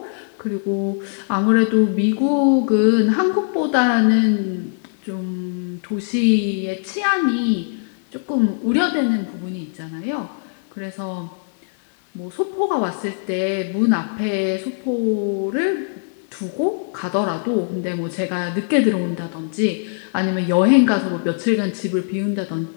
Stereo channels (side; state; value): right; silent; digital silence